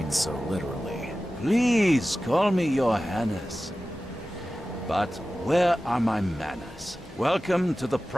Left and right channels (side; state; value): both; normal; correlation 0.95